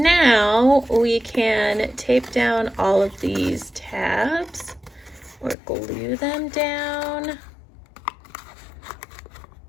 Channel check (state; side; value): drops out; right; at 5.6 s